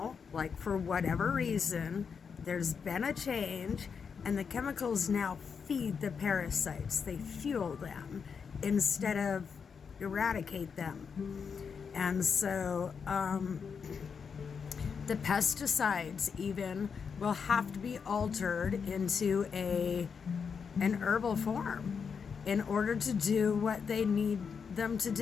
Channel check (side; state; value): right; quieter; 6.2 dB